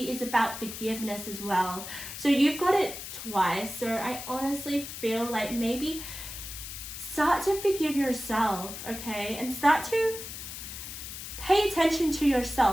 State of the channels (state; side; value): noise; left; hiss, 9 dB below the sound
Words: is about forgiveness as well. So you've got it twice. So I honestly feel like maybe start to forgive yourself, okay? And start to pay attention to